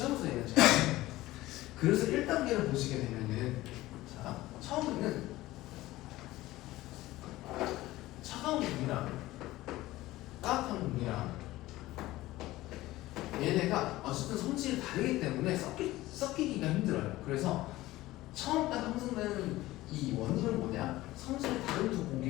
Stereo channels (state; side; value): quieter; right; 17.4 dB